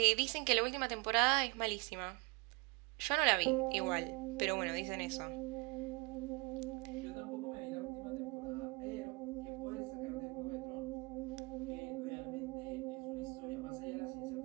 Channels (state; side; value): quieter; left; 28.0 dB